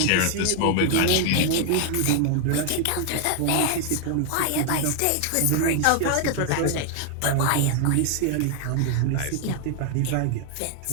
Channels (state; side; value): different; both; correlation 0.00